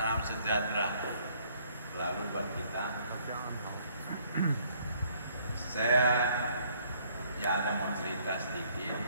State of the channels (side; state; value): both; inverted; correlation -0.64